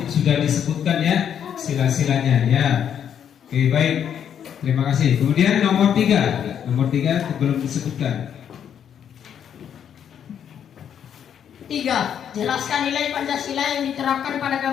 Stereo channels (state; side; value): quieter; right; 8.8 dB